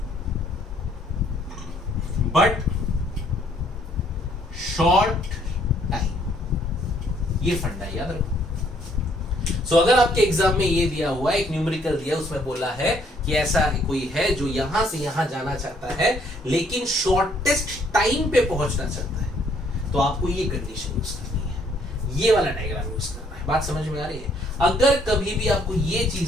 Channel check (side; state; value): both; normal; correlation 0.66